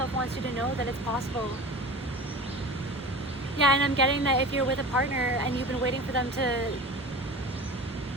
wants you to know that it's possible. Yeah, and I'm getting that if you're with a partner and you've been waiting for them to,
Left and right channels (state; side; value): normal; both; correlation 0.35